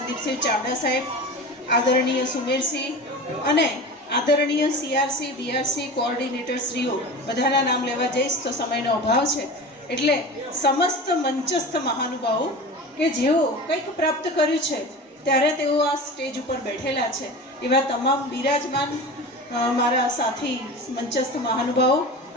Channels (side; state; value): both; normal; correlation 0.32